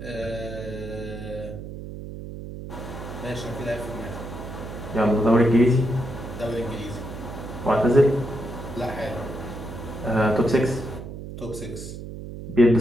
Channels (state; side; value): noise; right; hum, 10 dB below the sound